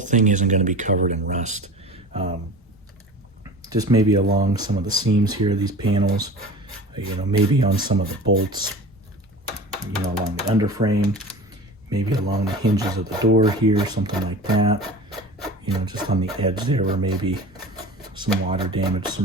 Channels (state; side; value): normal; both; correlation 0.36